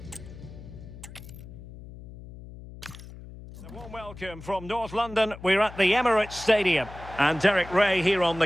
A warm welcome from North London. We're at the Emirates Stadium. And Derek Ray here on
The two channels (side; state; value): left; noise; hum, 15 dB below the sound